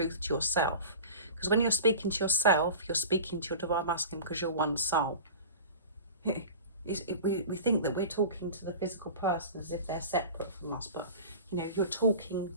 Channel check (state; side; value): inverted; both; correlation -0.36